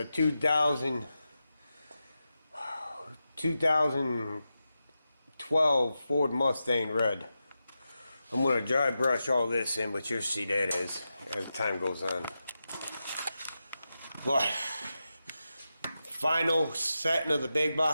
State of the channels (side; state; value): both; inverted; correlation -0.90